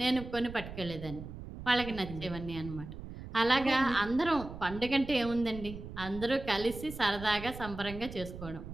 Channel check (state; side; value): noise; right; rumble, 11 dB below the sound